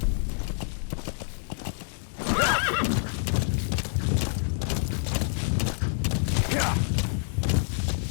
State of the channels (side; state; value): right; silent; 60 dB below the other